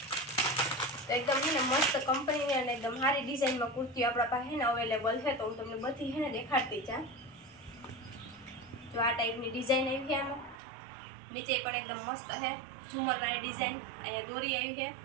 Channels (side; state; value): left; drops out; at 10.6 s